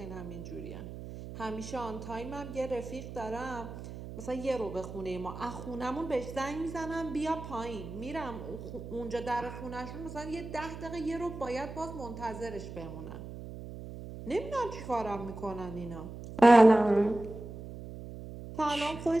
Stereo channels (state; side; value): noise; right; hum, 11 dB below the sound